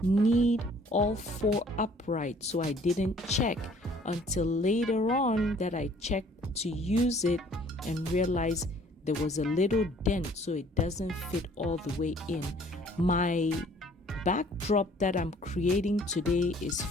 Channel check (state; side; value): normal; both; correlation 0.57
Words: need all four upright, so I didn't check until later on that I checked to use it and realized there was a little dent, so it doesn't fit all the way in. My backdrop that I'm creating today is